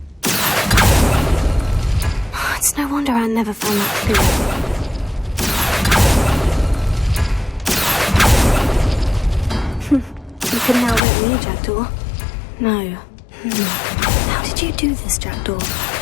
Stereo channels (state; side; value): drops out; right; at 11.0 s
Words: It's no wonder Anne never found that clue. You can now let me, Jackdaw. No. How did you do this, Jackdaw?